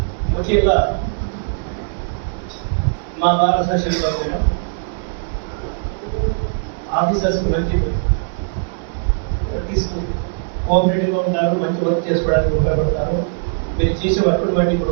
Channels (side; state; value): left; silent; 66 dB below the other